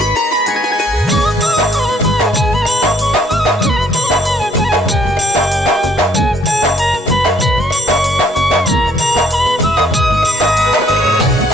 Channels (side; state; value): both; normal; correlation 0.65